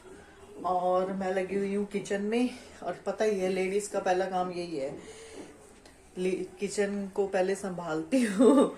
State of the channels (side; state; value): both; identical; correlation 1.00